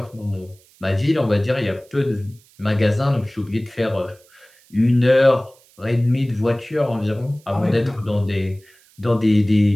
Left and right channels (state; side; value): noise; right; hiss, 30 dB below the sound